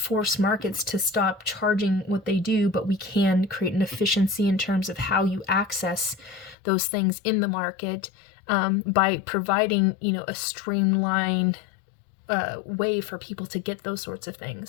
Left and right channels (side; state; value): right; drops out; at 6.6 s